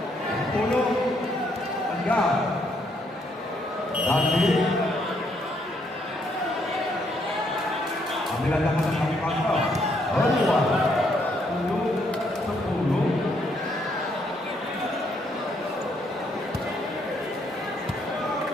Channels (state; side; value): normal; both; correlation 0.72